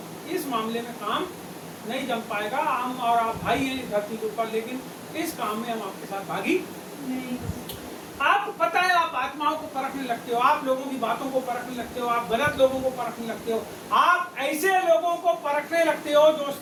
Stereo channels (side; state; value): both; identical; correlation 1.00